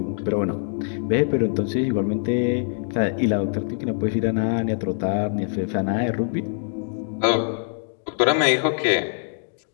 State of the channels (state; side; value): silent; right; digital silence